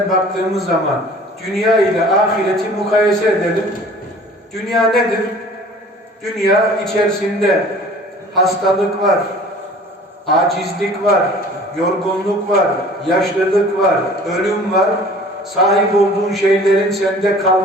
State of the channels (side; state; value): both; normal; correlation 0.48